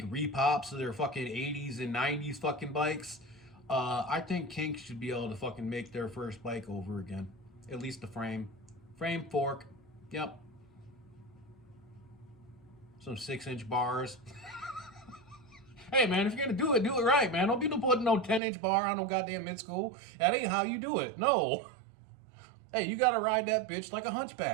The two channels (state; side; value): drops out; left; at 18.4 s